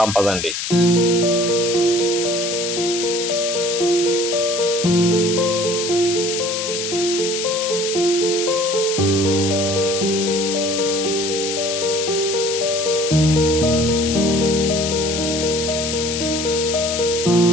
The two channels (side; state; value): left; noise; hiss, 3 dB below the sound